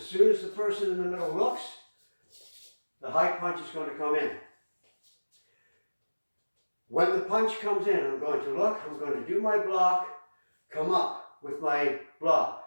soon as the person in the middle looks, the high punch is going to come in. When the punch comes in, I'm going to look, I'm going to do my block, come up with my block.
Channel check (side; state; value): both; inverted; correlation -1.00